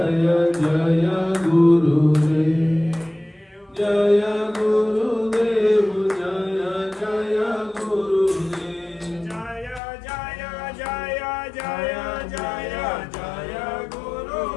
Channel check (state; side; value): drops out; right; at 9.8 s